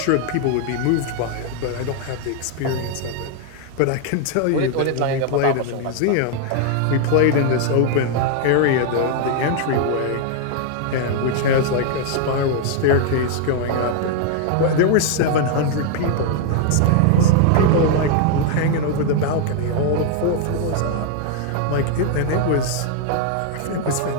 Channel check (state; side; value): different; both; correlation 0.00